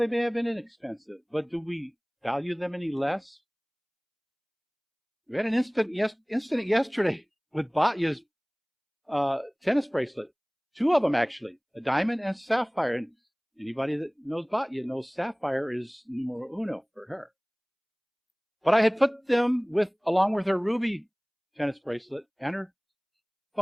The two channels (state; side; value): identical; both; correlation 1.00